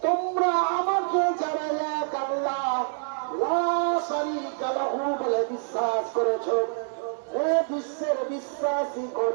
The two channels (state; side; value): silent; left; digital silence